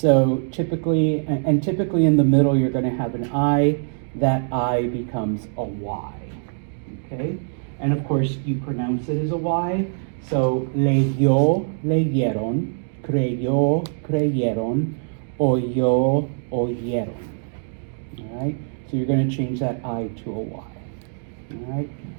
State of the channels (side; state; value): left; silent; digital silence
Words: typically, and typically in the middle, you're going to have an I. That I becomes a Y, okay? And of course, you pronounce it as a Y. So leyó, leyeron, creyó, creyeron, oyó, oyeron. All right? So you're going to change that I to a Y. All right?